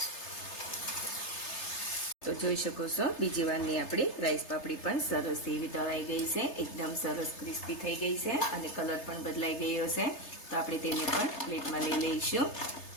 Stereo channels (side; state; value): right; late; 3.3 ms